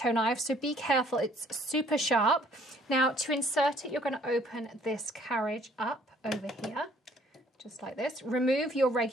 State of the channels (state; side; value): normal; both; correlation 0.60